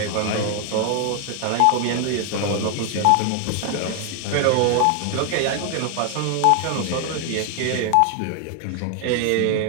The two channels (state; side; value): different; both; correlation 0.00